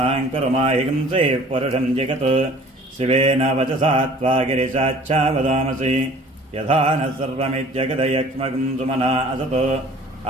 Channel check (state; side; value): normal; both; correlation 0.49